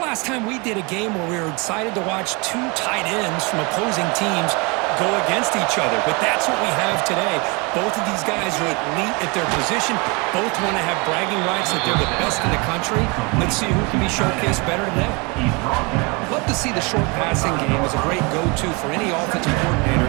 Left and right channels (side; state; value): left; quieter; 29.2 dB